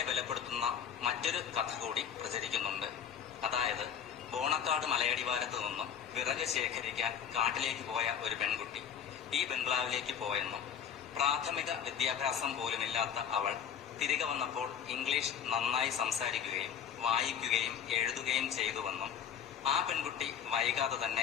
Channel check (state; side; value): quieter; right; 8.3 dB